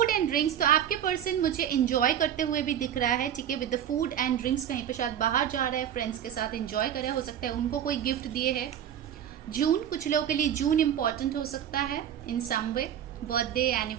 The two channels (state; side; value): quieter; left; 9.9 dB